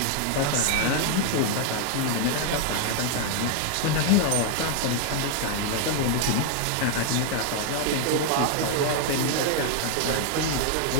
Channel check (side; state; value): both; different; correlation 0.00